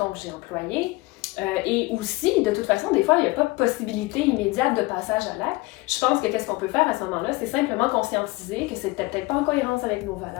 que j'ai employé. Et aussi, de toute façon, des fois, il n'y a pas de possibilité immédiate de passage à l'acte. Je pense que qu'est-ce qu'on peut faire à ce moment-là, c'est simplement conscientiser que c'était peut-être pas en cohérence avec nos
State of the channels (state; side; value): quieter; right; 22.0 dB